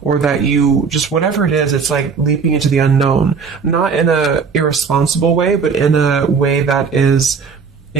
or that you just, whatever it is, it's like leaping into the unknown. Not in a irresponsible way, but in a way that is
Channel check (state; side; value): quieter; left; 5.5 dB